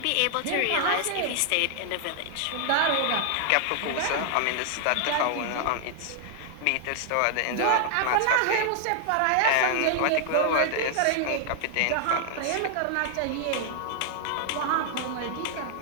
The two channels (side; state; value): both; different; correlation 0.00